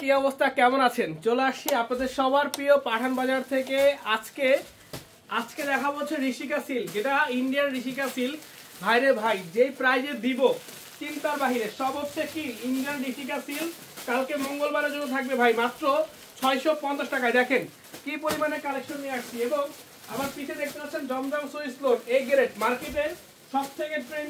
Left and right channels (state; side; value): identical; both; correlation 1.00